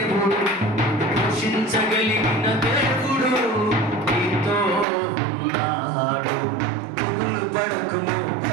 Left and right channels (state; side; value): drops out; left; at 4.9 s